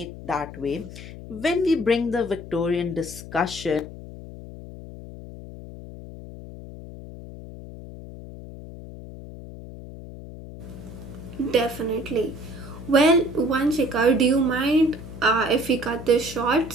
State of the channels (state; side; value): noise; left; hum, 13 dB below the sound